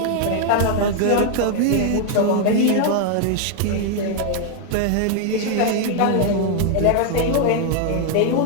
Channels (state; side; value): different; both; correlation 0.00